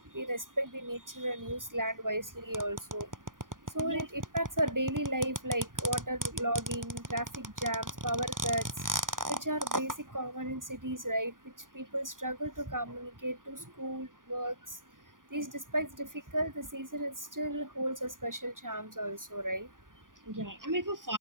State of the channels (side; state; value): left; late; 0.89 ms